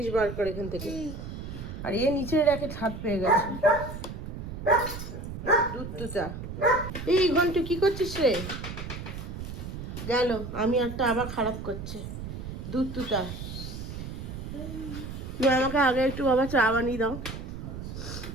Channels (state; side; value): noise; right; rumble, 8 dB below the sound